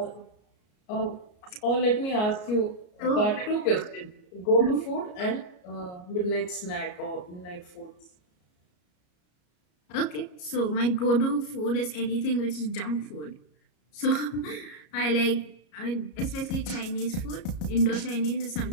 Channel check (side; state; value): right; late; 33 ms